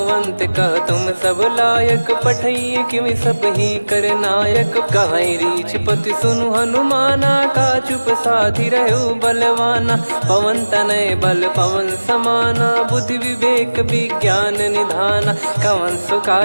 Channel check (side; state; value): both; inverted; correlation -1.00